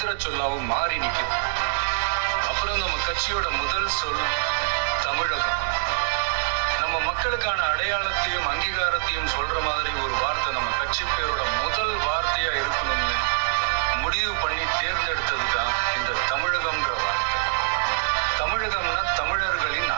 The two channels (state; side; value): silent; left; 62 dB below the other